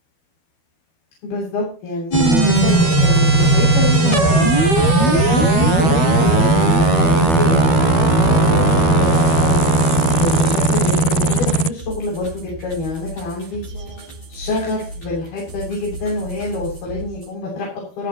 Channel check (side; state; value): right; late; 12 ms